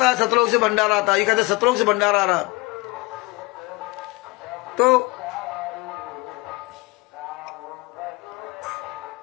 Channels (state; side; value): quieter; right; 23.5 dB